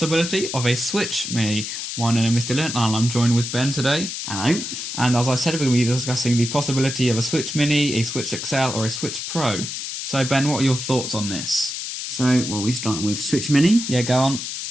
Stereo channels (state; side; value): noise; left; hiss, 6 dB below the sound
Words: of a Switch Mini. My name is Dylan and I'm joined with Ben today. Hello. And as I said, we're going to be discussing the possibility of a Switch Mini, a Switch XL or a Switch Pro. So Ben, what are your thoughts on this? So, we starting with Switch Mini. Yeah, go on.